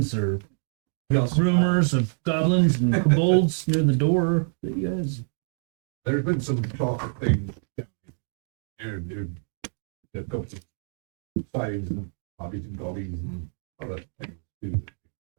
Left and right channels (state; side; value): silent; left; digital silence